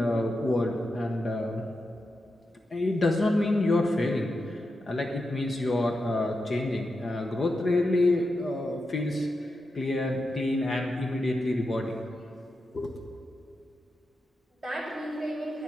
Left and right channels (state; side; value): normal; both; correlation 0.88